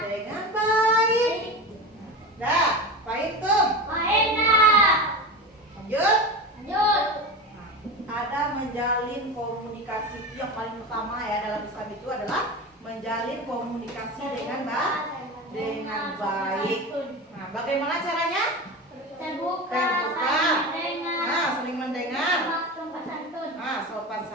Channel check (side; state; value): both; normal; correlation 0.26